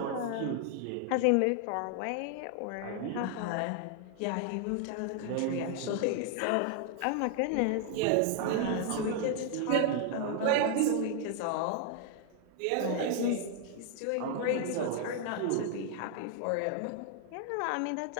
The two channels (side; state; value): both; different; correlation 0.00